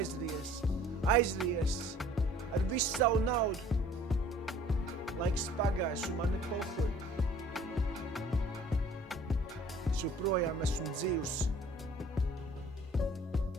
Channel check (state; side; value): normal; both; correlation 0.52